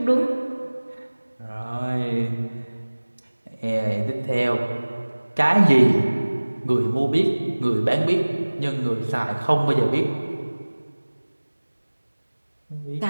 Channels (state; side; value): inverted; both; correlation -1.00